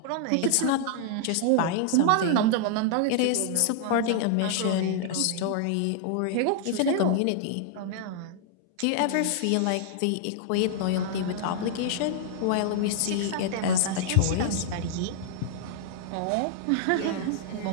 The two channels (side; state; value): both; different; correlation -0.01